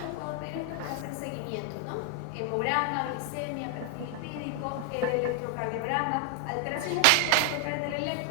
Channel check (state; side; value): different; both; correlation 0.00